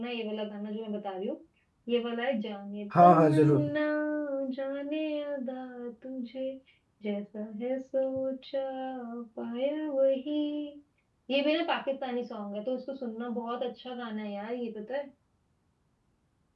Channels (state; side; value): identical; both; correlation 1.00